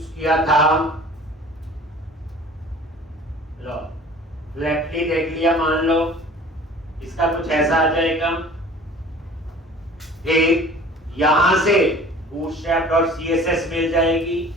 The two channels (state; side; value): normal; both; correlation 0.46